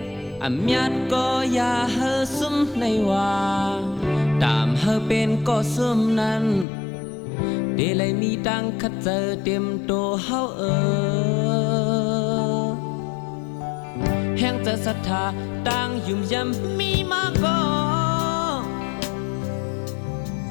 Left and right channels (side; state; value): right; drops out; at 6.7 s